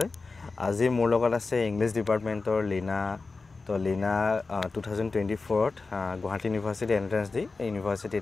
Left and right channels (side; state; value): right; quieter; 4.0 dB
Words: আজি মোৰ লগত আছে ইংলিছ ডিপাৰ্টমেণ্টৰ লীনা। তো লীনা 2024ত গুৱাহাটী ইউনিভাৰ্চিটি এন্ট্ৰেন্স দি